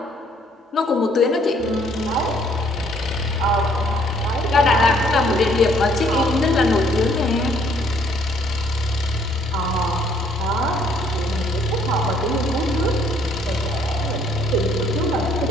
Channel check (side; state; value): both; normal; correlation 0.64